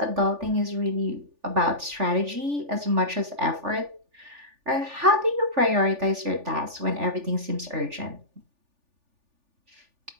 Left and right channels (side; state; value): left; late; 3.4 ms